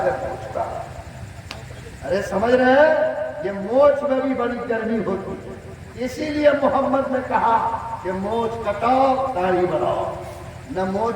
ہے، مونچھ کا۔ ارے سمجھ رہے ہیں؟ یہ مونچھ میں بھی بڑی گرمی ہوتی ہے، اسی لیے محمد نے کہا کہ مونچھ کٹاؤ داڑھی بڑھاؤ، نہ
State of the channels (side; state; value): both; identical; correlation 1.00